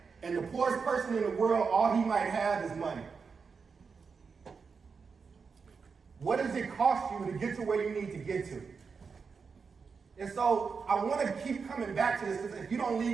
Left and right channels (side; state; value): left; quieter; 5.4 dB